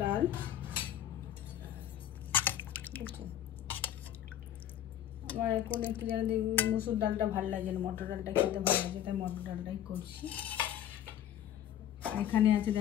ডাল। আমার এখন একটু যেন মসুর ডালটা ভালো লাগে না, মটর ডালটা খেতে ভালো লাগে, তাই মটর ডালটাই করছি। এখানে আছে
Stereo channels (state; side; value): quieter; right; 11.0 dB